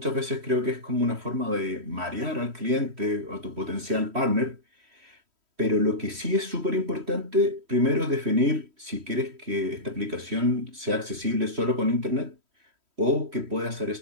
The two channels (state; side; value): late; left; 3.1 ms